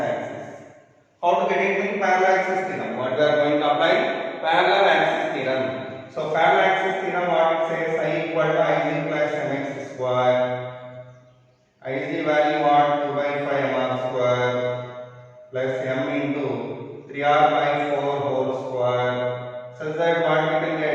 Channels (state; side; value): identical; both; correlation 1.00